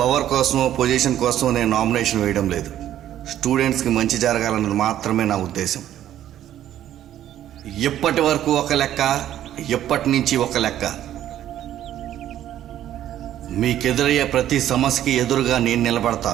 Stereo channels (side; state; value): left; quieter; 11.8 dB